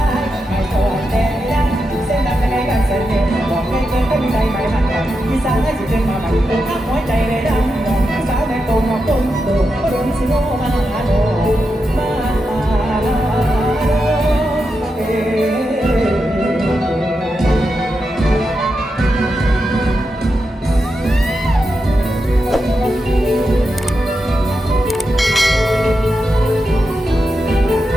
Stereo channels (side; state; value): both; normal; correlation 0.87